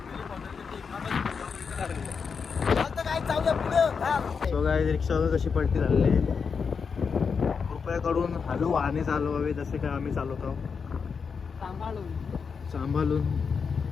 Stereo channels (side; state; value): right; quieter; 5.8 dB